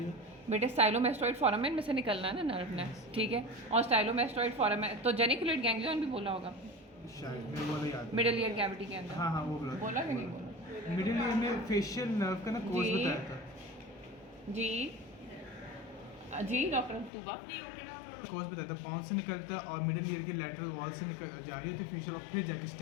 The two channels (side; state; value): right; drops out; at 17.1 s